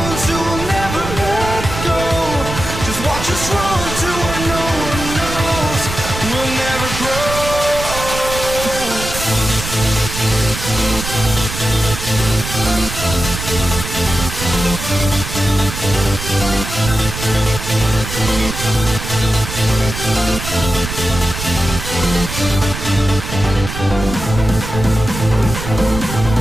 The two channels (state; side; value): noise; right; rumble, 7 dB below the sound